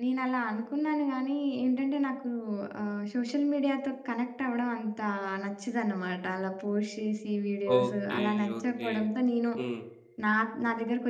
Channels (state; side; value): identical; both; correlation 1.00